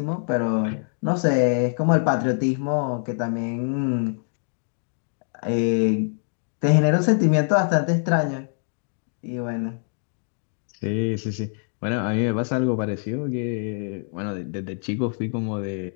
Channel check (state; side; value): silent; right; 59 dB below the other